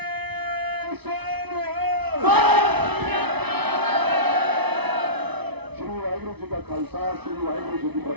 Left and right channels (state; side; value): late; left; 0.99 ms